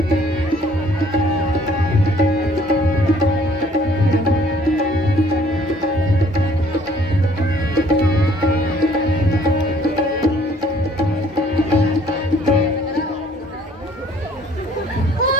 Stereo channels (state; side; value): normal; both; correlation 0.59